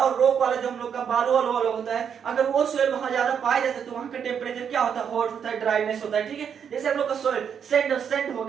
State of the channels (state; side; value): quieter; left; 7.7 dB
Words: रॉक वाला जो हम लोग का बालू वाला होता है, अगर वो सोइल वहां ज्यादा पाया जाता है तो वहां का टेम्परेचर क्या होता है हॉट होता है, ड्राइनेस होता है, ठीक है। जैसे हम लोग का सोइल सैंड हो